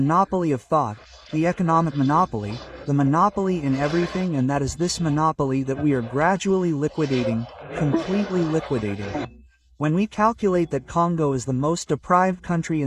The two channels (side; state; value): both; identical; correlation 1.00